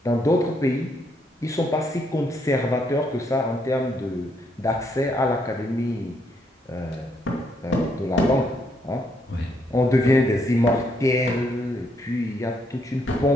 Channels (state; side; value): normal; both; correlation 0.74